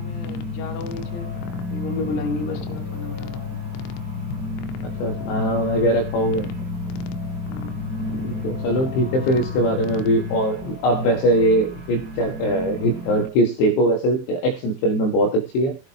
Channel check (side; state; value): right; late; 23 ms